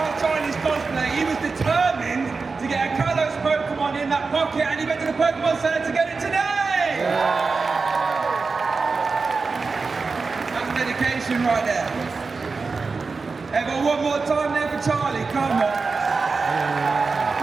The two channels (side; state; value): left; quieter; 4.4 dB